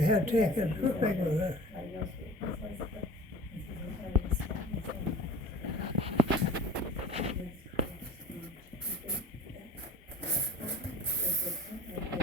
had taken. How big was it?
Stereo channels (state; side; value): normal; both; correlation 0.41